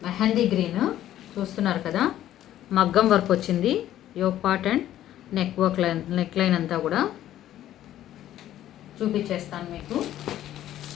mehndi green. చూస్తున్నారు కదా మగ్గం వర్క్ వచ్చింది. Yoke part and neck line అంతా కూడా చూపించేస్తాను మీకు.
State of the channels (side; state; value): right; quieter; 12.5 dB